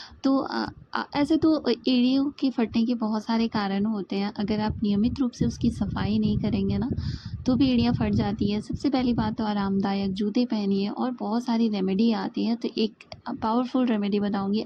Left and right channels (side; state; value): both; identical; correlation 1.00